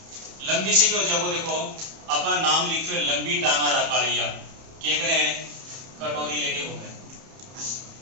लंबी से क्या हो जाएगा? देखो अपना नाम लिखो लंबी टांगा रकालिया, क्या कर रहे हैं? कटोरी लेके घूमे,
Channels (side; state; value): left; late; 31 ms